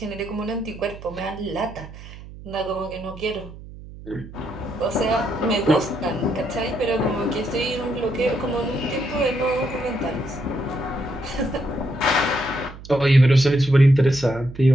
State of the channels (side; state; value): right; noise; hum, 15 dB below the sound